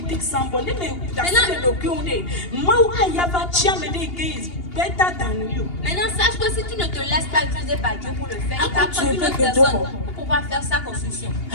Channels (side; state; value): right; late; 2.8 ms